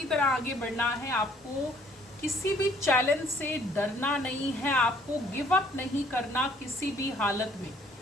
तरह आगे बढ़ना है। आपको किसी भी चैलेंज से डरना नहीं है। आपको गिव अप नहीं करना किसी भी हालत में।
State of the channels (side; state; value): both; normal; correlation 0.60